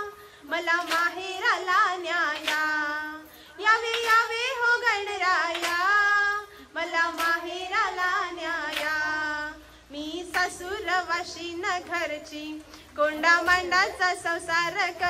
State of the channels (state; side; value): identical; both; correlation 1.00